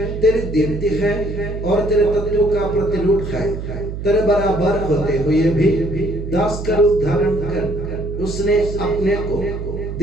तेरी दीप्ति है और तेरे तत्व का प्रतिरूप है। तेरे बराबर होते हुए भी दास का रूप धारण कर उसने अपने को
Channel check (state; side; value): noise; right; hum, 7 dB below the sound